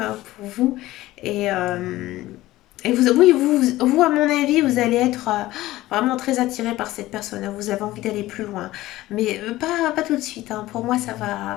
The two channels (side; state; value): right; quieter; 16.7 dB